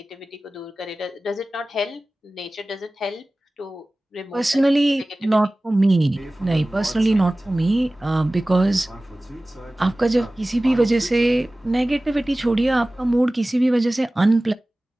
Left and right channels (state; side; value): normal; both; correlation 0.97